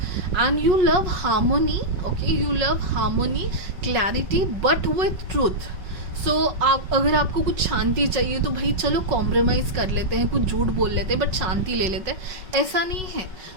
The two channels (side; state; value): left; late; 5.3 ms